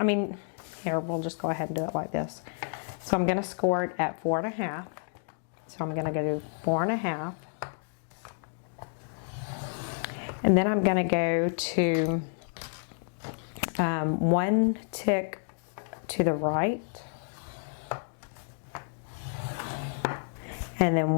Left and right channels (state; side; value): silent; right; digital silence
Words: mean, here, we'll just go ahead and do it like this. So I'm going to score it at 4.5. So I'm going to go to 4.5. And then I'm going to go to one tick to the right. And then